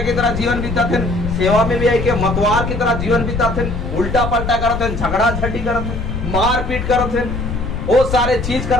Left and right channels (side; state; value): left; noise; rumble, 5 dB below the sound